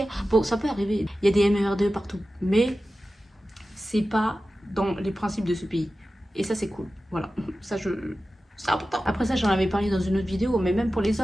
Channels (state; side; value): normal; both; correlation 0.94